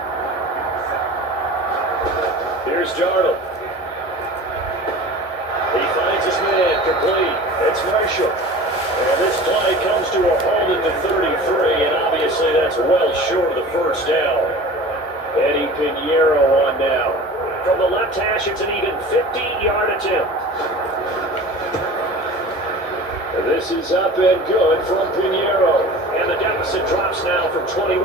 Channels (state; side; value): normal; both; correlation 0.39